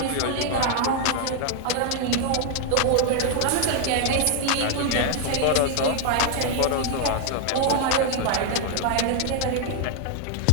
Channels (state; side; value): different; both; correlation 0.00